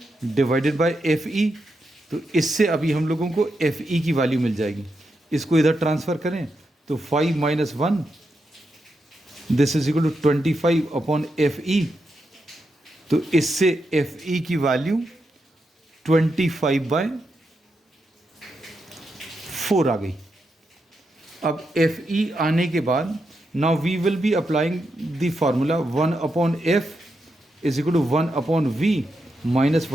डिवाइडेड बाय FE. तो इससे अभी हम लोगों को FE की वैल्यू मिल जाएगी. इसको इधर ट्रांसफ़र करें तो 5 minus 1 this is equal to 25 upon FE. तो इससे FE की वैल्यू 25 बाय 4 आ गई. अब FE आने के बाद now we will be applying the formula 1 upon F is equal to 1 upon V minus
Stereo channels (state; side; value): normal; both; correlation 0.85